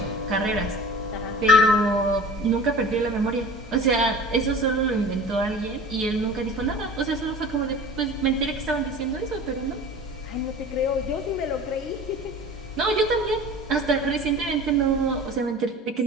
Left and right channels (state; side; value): normal; both; correlation 0.39